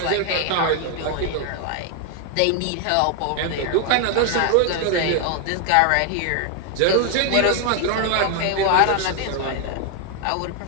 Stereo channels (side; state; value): both; different; correlation 0.00